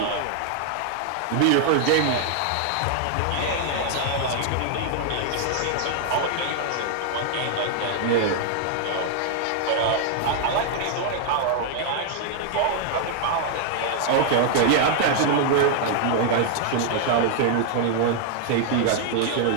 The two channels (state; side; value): different; both; correlation 0.00